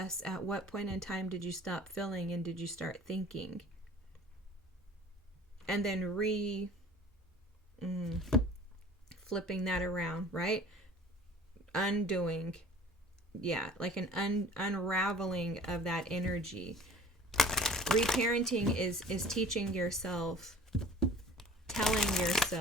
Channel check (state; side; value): normal; both; correlation 0.47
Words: at what point in time did you stop feeling and did you start thinking, and then flipping that around, right? Undoing, yeah, like an unraveling of that energy. Reparenting is teaching yourself, telling